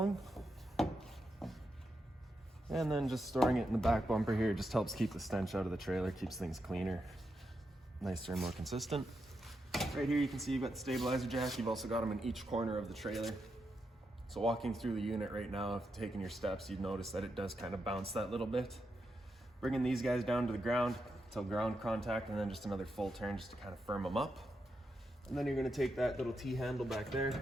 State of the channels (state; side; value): normal; both; correlation 0.85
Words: And then just storing it in the back bumper here just helps keep the stench out of the trailer, keeps things cleaner, nicer and more consistent. Right here you can see you've got the stabilizer jack. You've also got them in each corner of the trailer. So walking through the unit right now, if taking your steps, you'd notice that it does kind of bounce that little bit. Bringing these guys down to the ground until ground contact, and then just another full turn just to kind of firm them up. And then you're going to take that little T-handle back